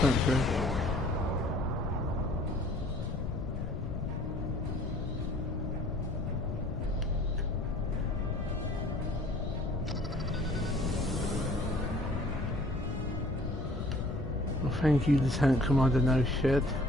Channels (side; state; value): left; noise; rumble, 4 dB below the sound